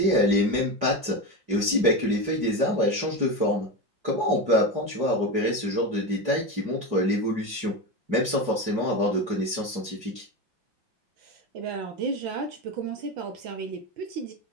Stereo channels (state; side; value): late; left; 5.5 ms